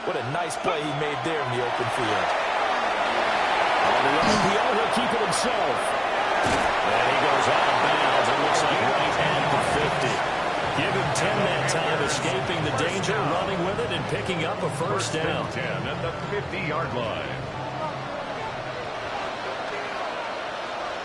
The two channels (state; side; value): identical; both; correlation 1.00